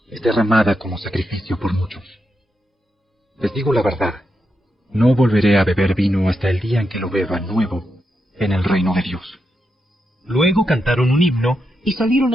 Es derramada como sacrificio por muchos. Les digo la verdad, no volveré a beber vino hasta el día en que lo beba nuevo en el reino de Dios. Luego cantaron un himno y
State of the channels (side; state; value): both; normal; correlation 0.85